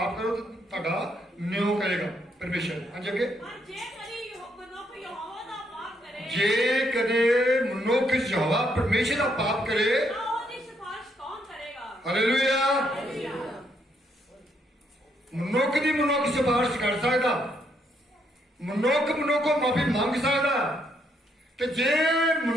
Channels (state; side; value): normal; both; correlation 0.74